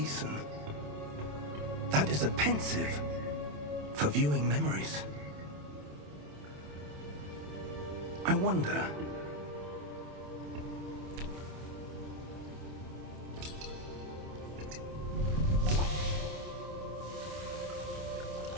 That is a pensive for viewing memories. I wonder...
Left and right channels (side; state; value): left; late; 27 ms